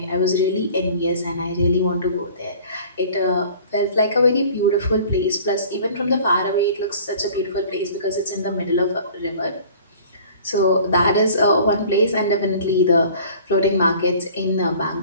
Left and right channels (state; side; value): inverted; both; correlation -0.48